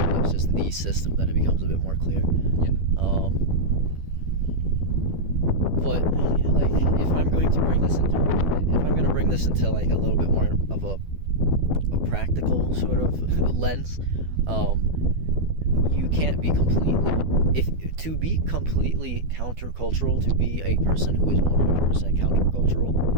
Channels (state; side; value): late; left; 12 ms